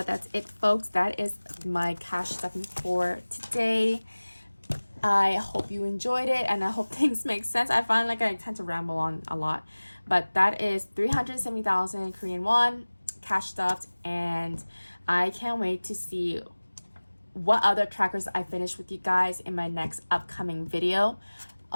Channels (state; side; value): inverted; both; correlation -1.00